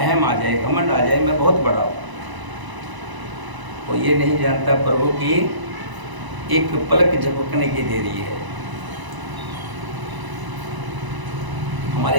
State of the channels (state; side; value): late; left; 1.0 ms